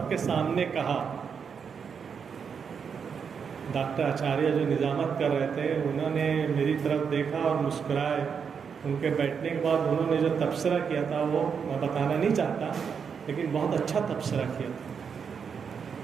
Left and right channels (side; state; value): left; quieter; 6.5 dB